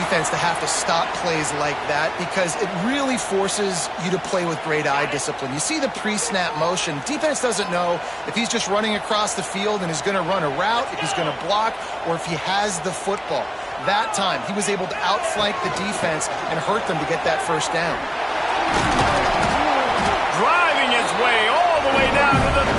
to have to stop plays like that because it really forces you to play with great eye discipline. You see the pre-snap motion. Defense doesn't know if he's just running across the field and is going to run a route, if he's going to block, or if he has the football. That time, he was able to outflank the defense and hurt them to get that first down. Driving his way all the way down to the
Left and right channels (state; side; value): identical; both; correlation 1.00